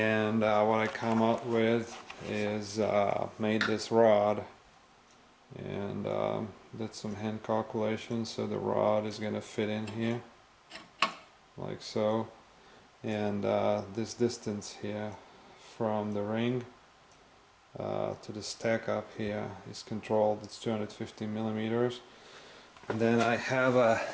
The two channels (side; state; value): both; identical; correlation 1.00